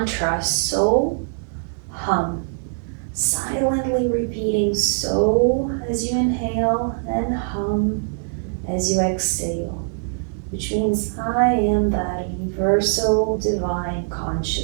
So Hum. Silently repeating So as you inhale and Hum as you exhale, which means I am that universal divine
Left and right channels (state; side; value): silent; left; digital silence